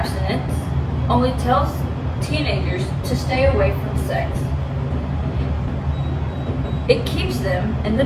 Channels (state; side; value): identical; both; correlation 1.00